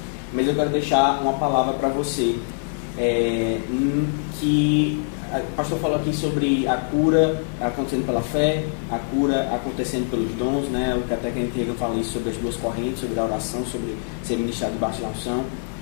Mas eu quero deixar uma palavra para você, que o pastor falou aqui sobre a cura acontecendo pela fé, a cura acontecendo pelos dons, né? O até Kenneth Hagin fala isso sobre as duas correntes, sobre a oração, sobre ser ministrado debaixo da unção.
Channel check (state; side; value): silent; right; digital silence